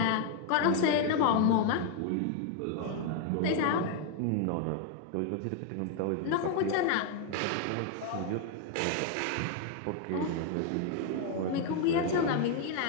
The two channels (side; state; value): both; different; correlation 0.00